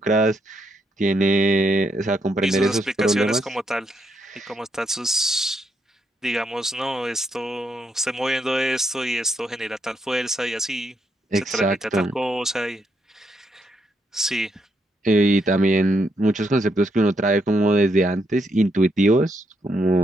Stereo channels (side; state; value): both; normal; correlation 0.77